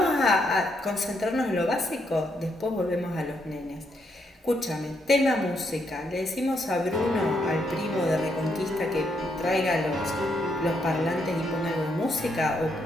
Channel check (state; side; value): normal; both; correlation 0.77